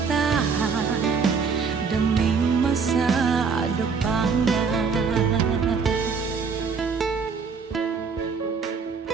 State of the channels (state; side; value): quieter; left; 5.4 dB